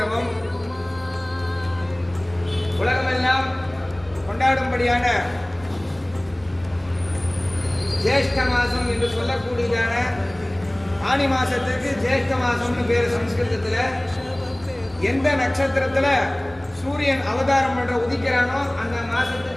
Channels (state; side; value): noise; right; rumble, 24 dB below the sound